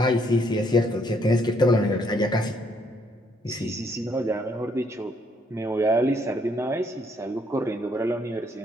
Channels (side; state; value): both; normal; correlation 0.69